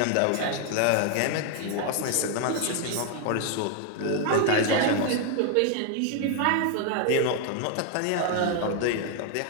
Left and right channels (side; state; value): both; different; correlation 0.00